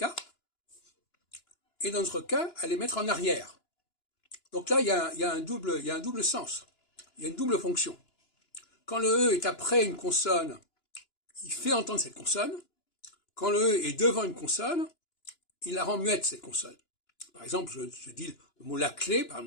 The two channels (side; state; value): right; late; 2.9 ms